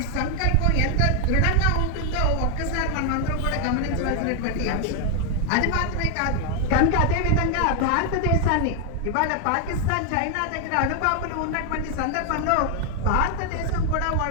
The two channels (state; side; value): different; both; correlation 0.00